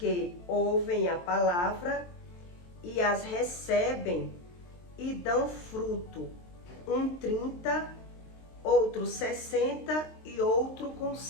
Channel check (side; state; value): right; late; 23 ms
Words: ouvem a palavra e as recebem e dão fruto, um 30, outro 60 e outro com